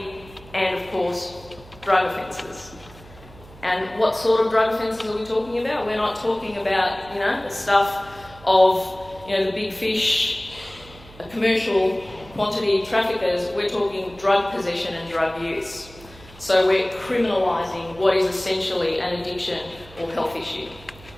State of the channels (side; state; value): right; noise; hum, 21 dB below the sound